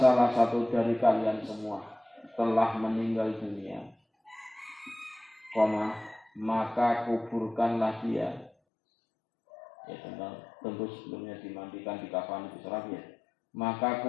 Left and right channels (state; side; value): drops out; right; at 8.5 s